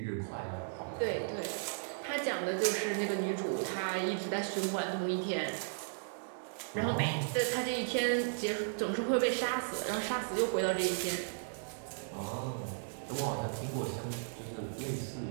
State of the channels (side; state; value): left; silent; digital silence